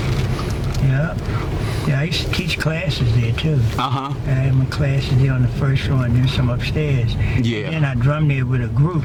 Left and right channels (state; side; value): identical; both; correlation 1.00